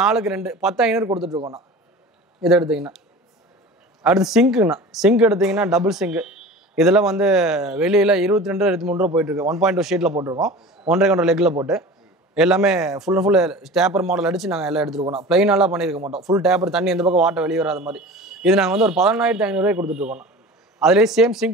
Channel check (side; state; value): both; normal; correlation 0.37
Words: 4க்கு 2 10500 கொடுத்துட்ருக்கோண்ணா. இது எடுத்திங்கன்னா அடுத்து சிங்க்குண்ணா. சிங்க் எடுத்திங்கன்னா டபுள் சிங்க்கு. இதெல்லாம் வந்து வெளியில் 22 23 ரூபா போயிட்டுருக்கு. 1.2 ஷீட்டில் போட்டிருக்கோம். 1.5 லெக்கில் போட்டு எல்லாமே full and full taper model அடித்து நாங்கள் எல்லாம் எடுத்துருக்கோம். ப்ளைனாலாம் பண்ணியிருக்க மாட்டோம். ஃபுல் டேப்பர் தண்ணி எந்த பக்கம் வாட்டர் வெளியே வராத மாதிரி. இது நாங்கள் வந்து ஒரு 11500 கொடுத்துட்ருக்கோம். அதுலேயே same sink